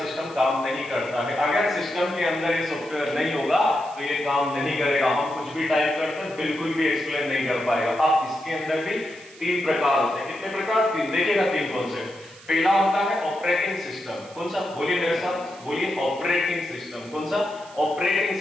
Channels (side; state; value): right; noise; hiss, 22 dB below the sound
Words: सिस्टम काम नहीं करता है। अगर सिस्टम के अंदर ये सॉफ्टवेयर नहीं होगा तो ये काम नहीं करेगा। हम कुछ भी टाइप करते हैं बिल्कुल भी एक्सप्लेन नहीं कर पाएगा। अब इसके अंदर भी 3 प्रकार होते हैं। कितने प्रकार? 3। देखिएगा 3 कौन से। पहला होता है ऑपरेटिंग सिस्टम। कौन सा? बोलिए मेरे साथ, बोलिए ऑपरेटिंग सिस्टम। कौन सा? Operating